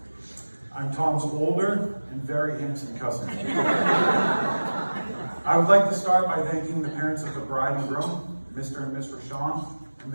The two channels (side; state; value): both; inverted; correlation -1.00